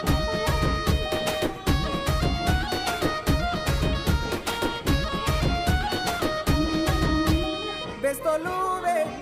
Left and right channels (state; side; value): identical; both; correlation 1.00